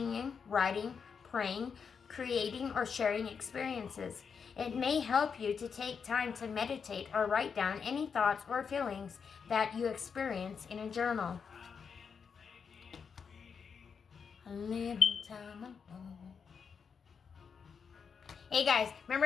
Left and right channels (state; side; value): quieter; right; 6.2 dB